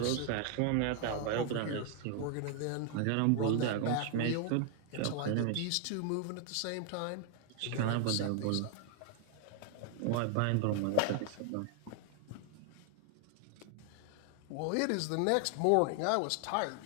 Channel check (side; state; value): both; different; correlation 0.00